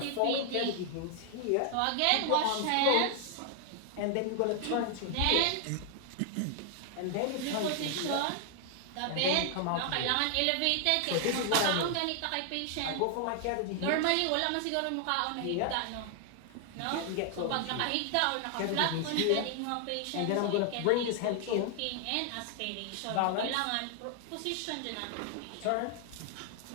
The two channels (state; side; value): different; both; correlation 0.00